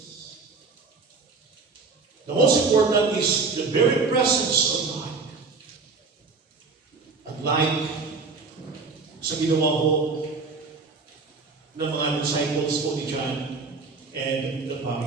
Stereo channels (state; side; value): quieter; left; 4.3 dB